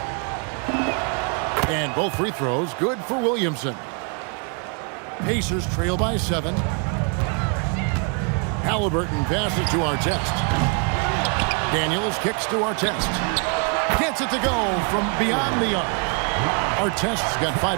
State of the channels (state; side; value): quieter; left; 37.8 dB